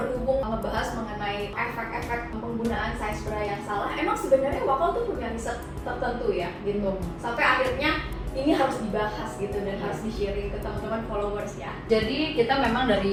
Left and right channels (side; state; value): both; identical; correlation 1.00